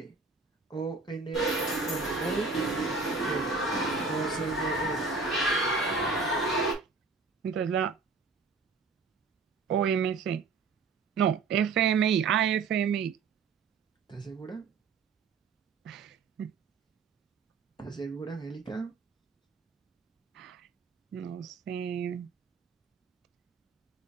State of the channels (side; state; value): left; quieter; 4.6 dB